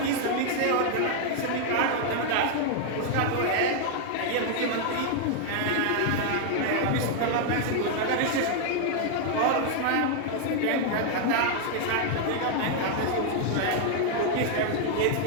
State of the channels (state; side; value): different; both; correlation 0.00